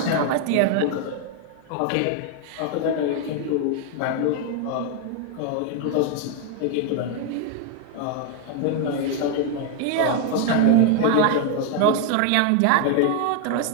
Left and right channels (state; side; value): different; both; correlation 0.00